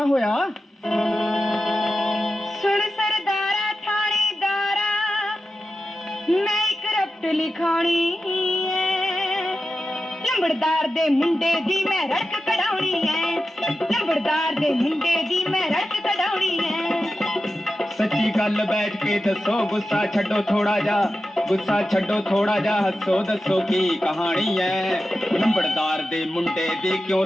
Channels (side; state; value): both; normal; correlation 0.92